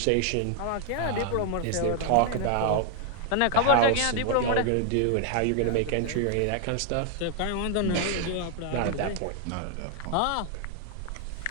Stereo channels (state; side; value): different; both; correlation 0.00